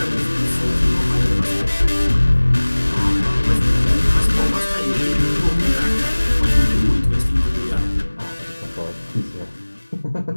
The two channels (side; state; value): both; inverted; correlation -1.00